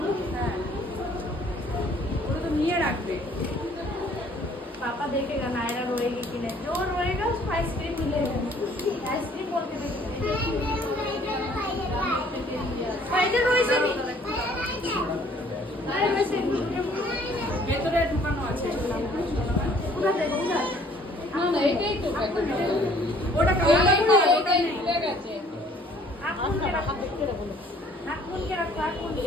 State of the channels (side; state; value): both; normal; correlation 0.58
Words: ওটা তো নিয়ে রাখবে। पापा देखेगा नायरा रोएगी कि नहीं। जो रोएगा उसको आइसक्रीम मिलेगा। आइसक्रीम बोल के फायदे रोए से नहीं। अरे वैसे ভেতরে ঢুকানো আছে। पूरा दे दूंगा। না না এটাই তো ওটা কালার করে ওটা নেই। आप कौन के रखो? आप कौन के रखो? आप कौन?